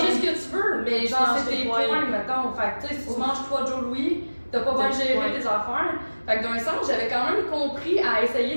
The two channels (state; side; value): inverted; both; correlation -1.00